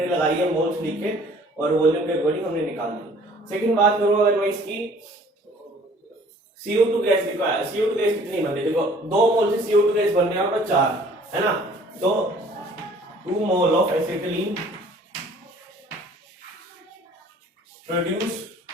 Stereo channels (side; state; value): both; normal; correlation 0.54